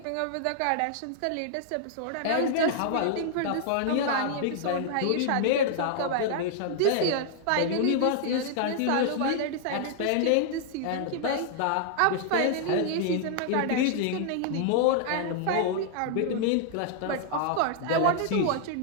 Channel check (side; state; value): both; different; correlation -0.01